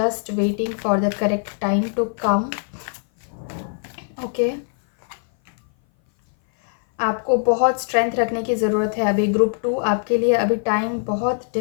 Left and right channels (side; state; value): right; silent; 59 dB below the other